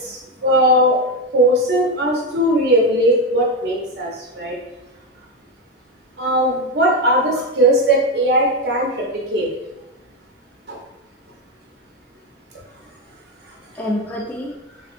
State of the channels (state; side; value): normal; both; correlation 0.11